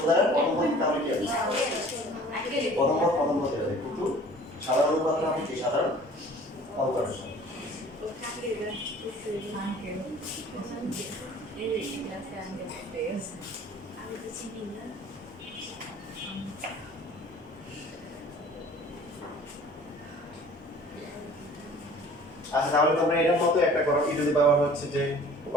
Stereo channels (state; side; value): normal; both; correlation 0.48